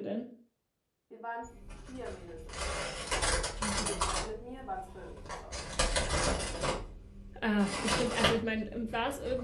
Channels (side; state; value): both; identical; correlation 1.00